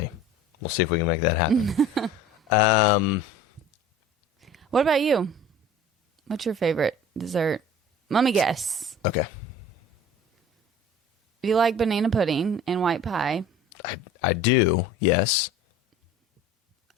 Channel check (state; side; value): normal; both; correlation 0.43